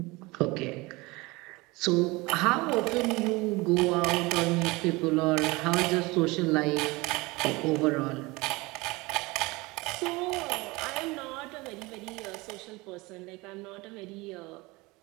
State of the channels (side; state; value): left; quieter; 23.2 dB